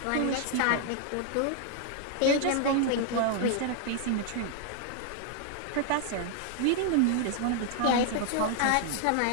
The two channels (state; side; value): different; both; correlation 0.00